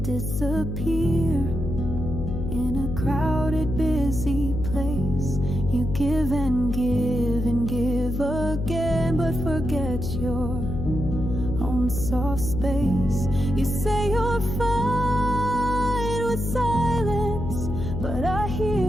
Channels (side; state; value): left; noise; hum, 4 dB below the sound